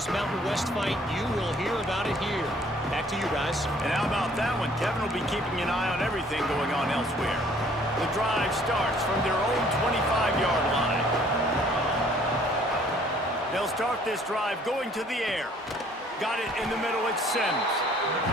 Mountain West fight, you will hear about it here. Back to you guys. And how about that one? Kevin will be keeping an eye on everything going on elsewhere. The drive starts from their own 25-yard line. They'll start this drive going to the air. Got it in the middle, it's Sims.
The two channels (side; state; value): both; normal; correlation 0.58